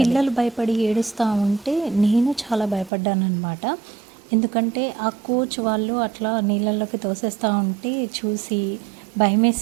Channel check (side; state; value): left; drops out; at 2.9 s